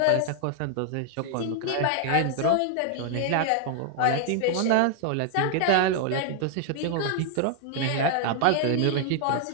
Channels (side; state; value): both; different; correlation -0.01